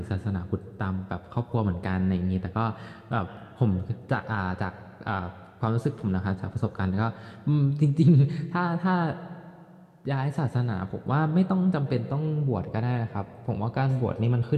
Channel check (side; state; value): both; identical; correlation 1.00